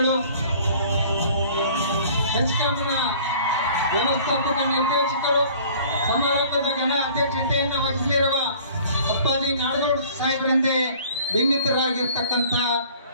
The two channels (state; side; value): inverted; both; correlation -0.50